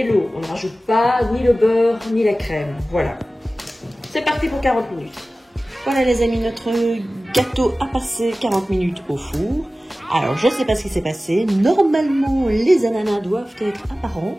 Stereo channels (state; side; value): normal; both; correlation 0.96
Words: l'eau. On ne rajoute pas ni le beurre, ni la crème. Voilà. C'est parti pour 40 minutes. Voilà les amis, notre gâteau a passé 40 minutes au four. Alors je ne sais pas ce qui s'est passé. Normalement les ananas doivent être apparents,